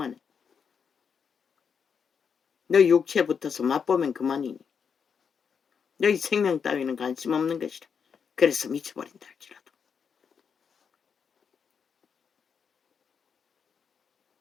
너희 육체에 붙어서 맛보면 그만이니 너희 생명 따위는 관심 없는 것이라. 그래서 미쳐버린다 할지라도.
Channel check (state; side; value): quieter; right; 6.6 dB